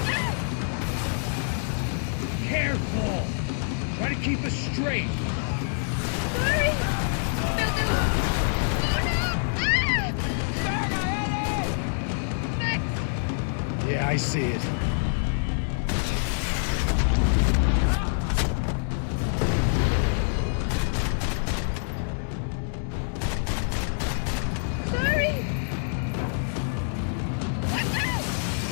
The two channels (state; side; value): silent; right; digital silence